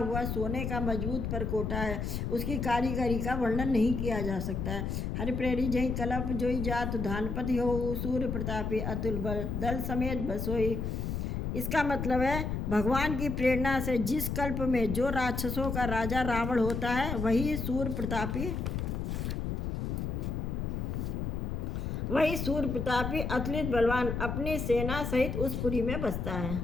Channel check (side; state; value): left; noise; rumble, 2 dB below the sound